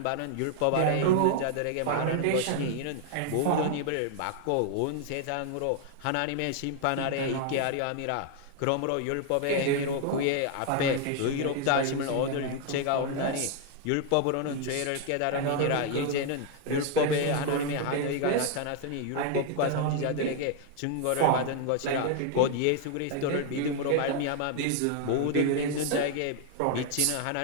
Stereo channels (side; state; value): both; different; correlation 0.00